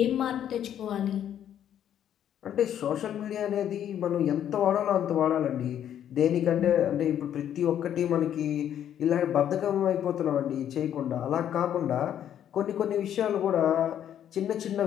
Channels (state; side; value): quieter; right; 10.1 dB